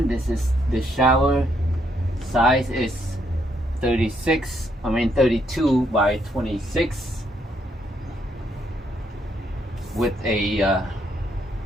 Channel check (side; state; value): both; normal; correlation 0.73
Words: this is the shower size is 32 by 26 with a